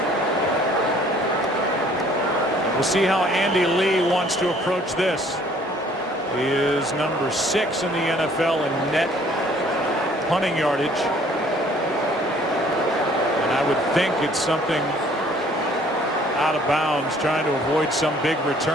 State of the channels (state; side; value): normal; both; correlation 0.57